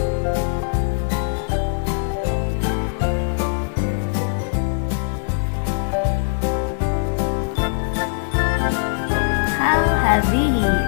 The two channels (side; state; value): right; silent; digital silence